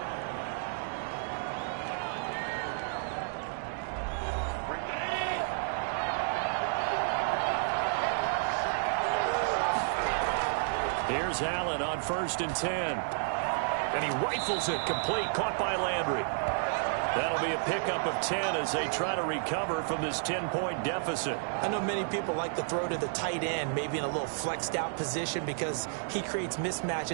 Here's Allen on 1st and 10. And he rifles it complete, caught by Landry. That'll be a pickup of 10 as they try to recover from this 10-point deficit. I know many people like to throw to the tight end, maybe in a little flexed out position because he creates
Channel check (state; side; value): silent; left; digital silence